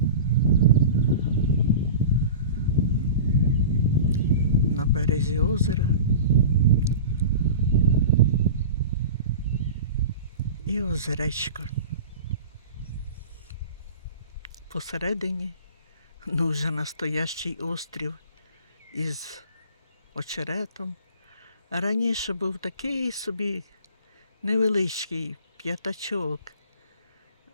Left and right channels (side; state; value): both; inverted; correlation -0.36